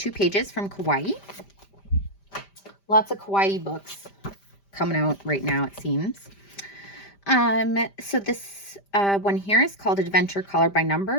pages from Kawaii. Lots of Kawaii books coming out right now, it seems. So this one here is called Adventure Color by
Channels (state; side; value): late; right; 5.1 ms